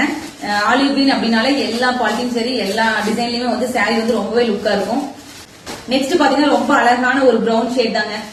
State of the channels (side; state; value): both; identical; correlation 1.00